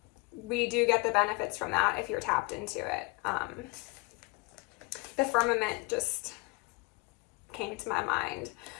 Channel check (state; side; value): quieter; right; 25.8 dB